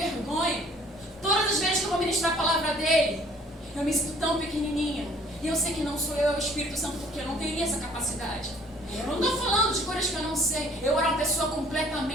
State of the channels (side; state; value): both; normal; correlation 0.56